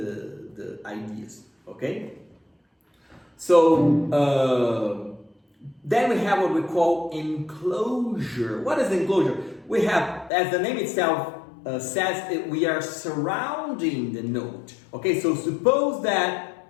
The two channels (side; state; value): right; drops out; at 10.3 s